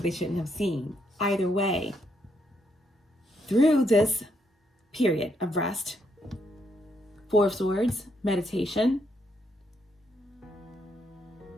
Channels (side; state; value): both; normal; correlation 0.76